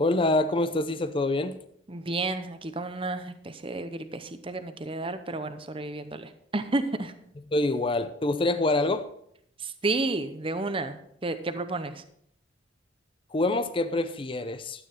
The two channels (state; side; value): normal; both; correlation 0.47